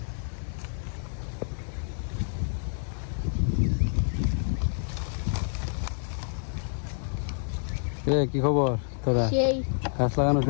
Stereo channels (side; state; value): right; silent; digital silence